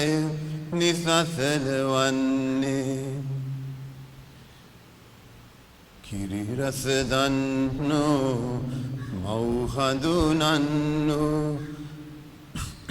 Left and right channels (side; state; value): both; identical; correlation 1.00